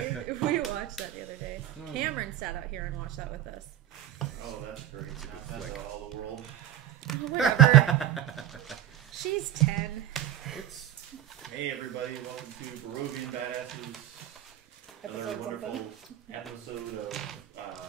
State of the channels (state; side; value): quieter; left; 11.8 dB